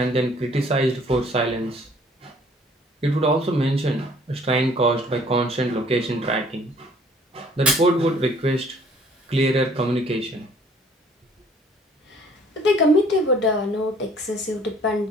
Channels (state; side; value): normal; both; correlation 0.57